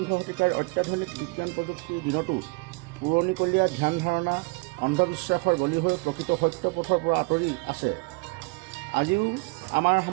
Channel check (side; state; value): left; quieter; 28.8 dB